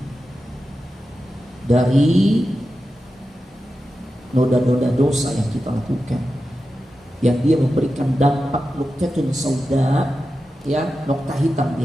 dari noda-noda dosa yang kita lakukan, yang dia memberikan dampak nuqtatun sauda, ya, nokta hitam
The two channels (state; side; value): normal; both; correlation 0.91